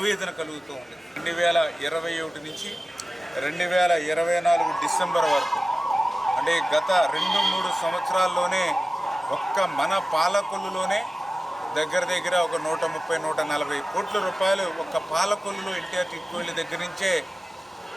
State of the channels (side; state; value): both; normal; correlation 0.96